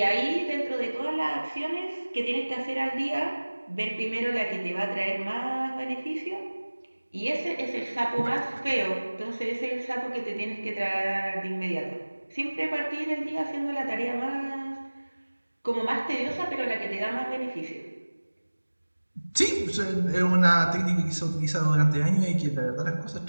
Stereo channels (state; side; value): inverted; both; correlation -1.00